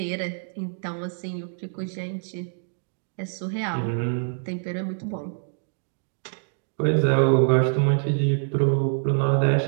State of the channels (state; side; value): silent; left; digital silence